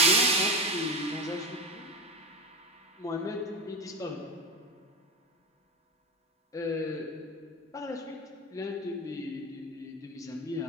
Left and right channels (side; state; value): both; normal; correlation 0.19